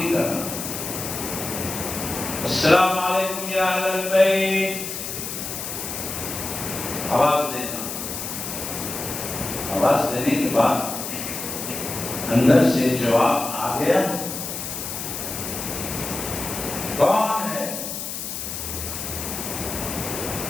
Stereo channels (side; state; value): left; noise; hiss, 6 dB below the sound